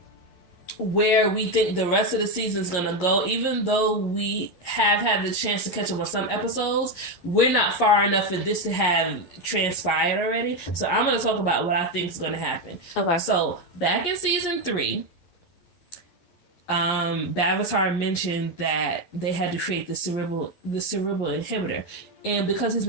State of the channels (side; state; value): right; late; 11 ms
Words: where we think the rest of the season is going to go. Even though we have had the chance to catch up on some episodes, we're not far enough for this to have transpired already. So I'm going to talk about what I think is going to happen. Okay. So back in season 3, Bavatar mentioned that they had to create the cerebral inhibitor. And because his